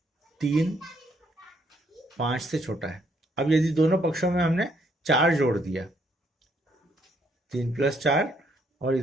3 5 से छोटा है। अब यदि दोनों पक्षों में हमने 4 जोड़ दिया, 3 प्लस 4 और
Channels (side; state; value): both; normal; correlation 0.70